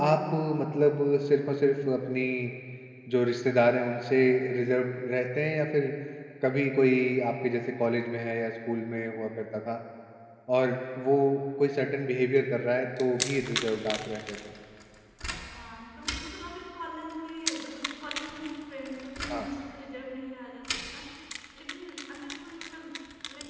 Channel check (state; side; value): identical; both; correlation 1.00